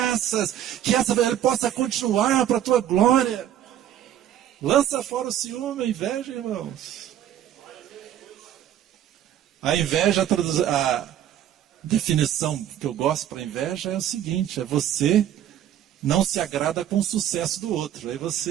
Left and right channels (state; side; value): quieter; left; 11.1 dB